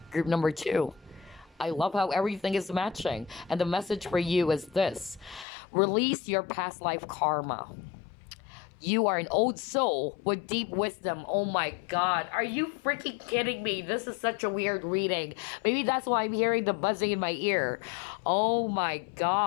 Group number 2. I love how everything is matching. And the message for you is this. Release your past life karma. You are an old soul with deep wisdom. Oh my God. Are you freaking kidding me? This is such a weird reading. Maybe that's why I'm hearing the buzzing in my ear. Oh my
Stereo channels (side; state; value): right; drops out; at 5.5 s